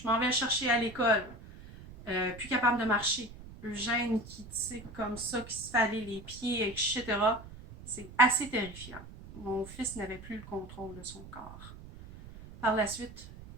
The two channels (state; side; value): noise; right; rumble, 16 dB below the sound